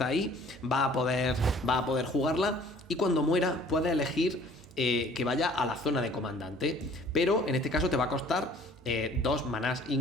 ahí, va a poder jugarla y cuando muera puede elegir que vaya a la zona de comandante, pero en este caso te va a costar 2 manás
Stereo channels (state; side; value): normal; both; correlation 0.53